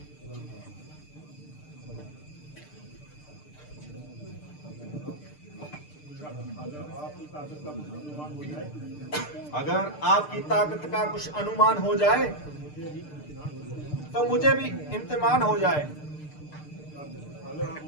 अगर आपकी ताकत का कुछ अनुमान हो जाए तो मुझे भी इम्तिहान हो जाए।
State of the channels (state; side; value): late; right; 6.7 ms